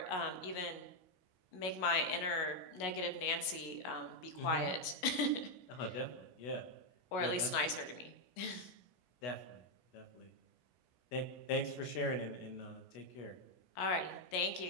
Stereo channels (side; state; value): right; late; 16 ms